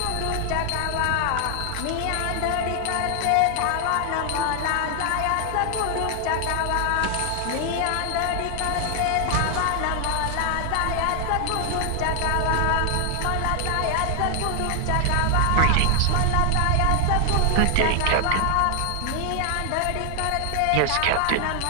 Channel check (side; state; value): both; different; correlation 0.00